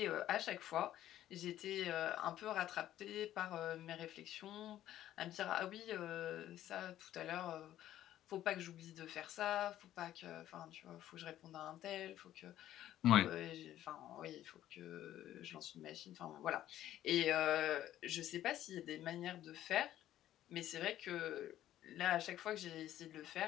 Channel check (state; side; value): quieter; right; 12.7 dB